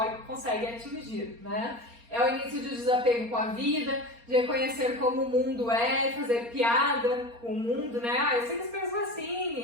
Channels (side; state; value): left; late; 4.3 ms